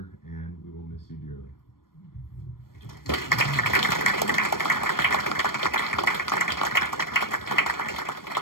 and we will miss you dearly.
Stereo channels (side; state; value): right; late; 0.92 ms